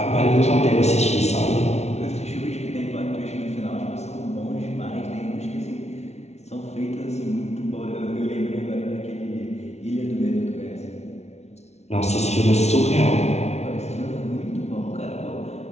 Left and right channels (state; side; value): late; right; 0.31 ms